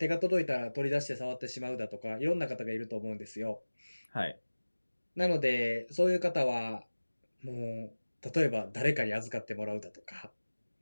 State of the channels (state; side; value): inverted; both; correlation -1.00